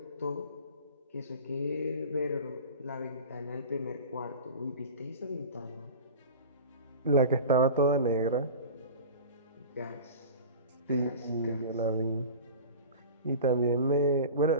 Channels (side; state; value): both; inverted; correlation -0.36